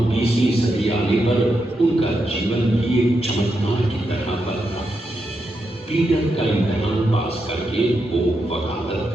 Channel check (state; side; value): normal; both; correlation 0.84